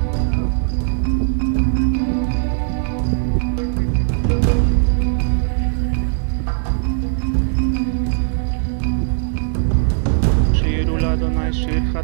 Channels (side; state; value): left; silent; 67 dB below the other